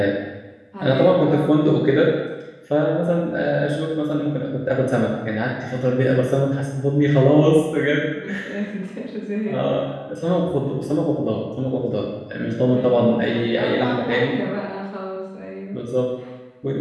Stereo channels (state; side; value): identical; both; correlation 1.00